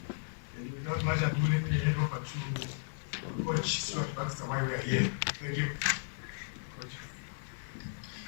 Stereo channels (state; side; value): silent; right; digital silence